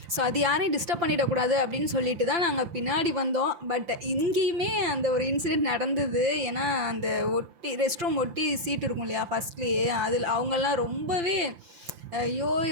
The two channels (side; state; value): left; late; 5.8 ms